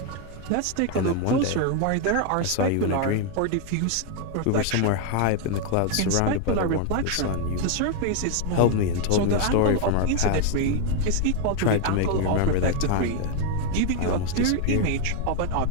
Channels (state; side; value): different; both; correlation 0.01